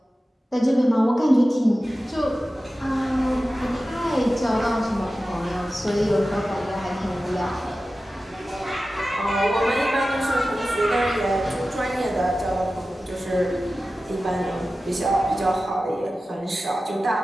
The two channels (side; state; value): both; normal; correlation 0.95